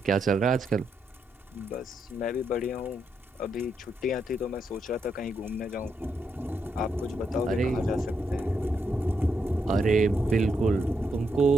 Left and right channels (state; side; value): normal; both; correlation 0.81